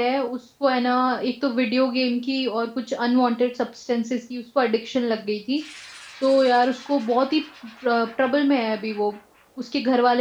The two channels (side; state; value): both; identical; correlation 1.00